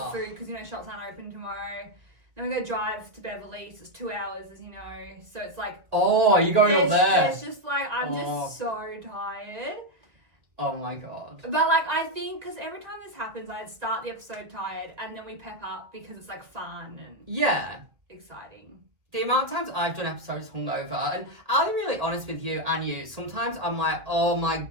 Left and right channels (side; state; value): left; late; 2.2 ms